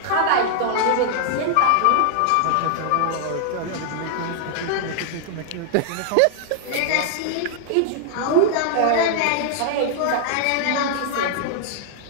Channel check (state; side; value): different; both; correlation -0.01